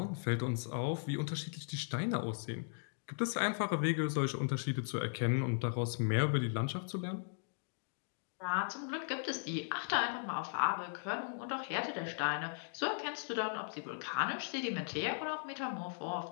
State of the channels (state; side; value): silent; right; digital silence